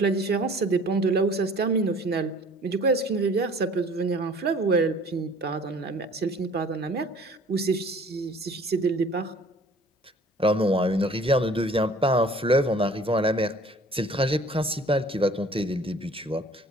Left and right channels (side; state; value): both; normal; correlation 0.51